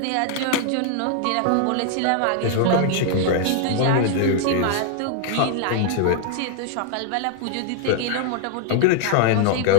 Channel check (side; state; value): both; different; correlation 0.00